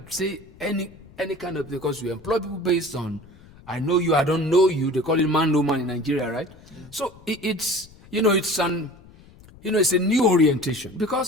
say any kind of, because we employ people based on, I know you, I don't know you. They call it man, no man in Nigeria, right? So it's a new orientation.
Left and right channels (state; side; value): noise; left; rumble, 23 dB below the sound